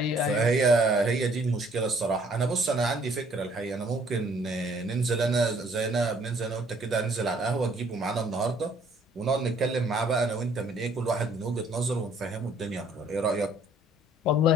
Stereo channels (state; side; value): normal; both; correlation 0.61